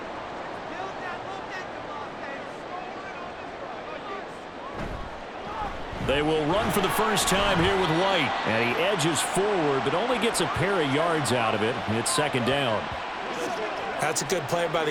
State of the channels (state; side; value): identical; both; correlation 1.00